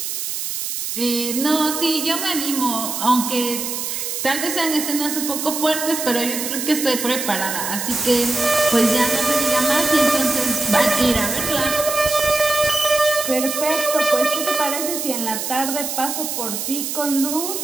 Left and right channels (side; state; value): right; noise; hiss, 4 dB below the sound